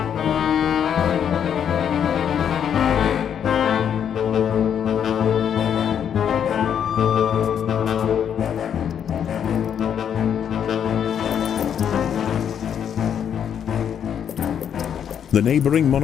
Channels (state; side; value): quieter; right; 8.6 dB